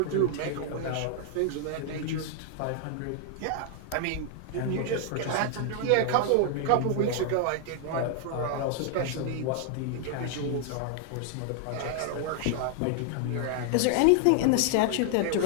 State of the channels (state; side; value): different; both; correlation 0.00